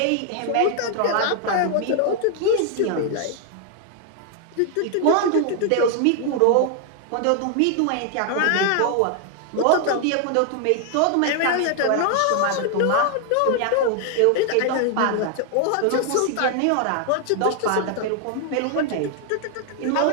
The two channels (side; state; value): both; different; correlation 0.00